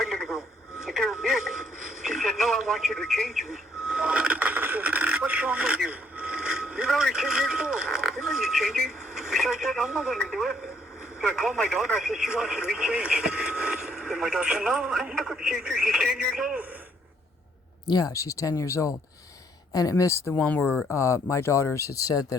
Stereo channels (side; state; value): both; normal; correlation 0.67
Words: little girl. But they were big." She said, "No, I want you to change me." I said, "What's wrong with you?" change it. So I said, I'm not going to do it. So I called my daughter. I said, she wants to be changed. And my daughter said, no, I'm not going to change her. She's 10 years old. Yeah, she's 10 years old. And it missed the one where my daughters had said